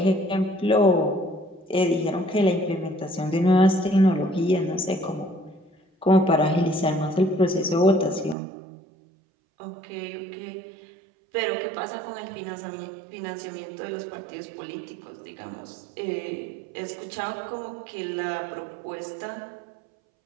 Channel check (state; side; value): drops out; left; at 8.3 s